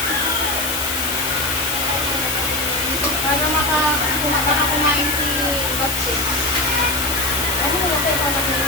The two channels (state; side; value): noise; left; hiss, 3 dB below the sound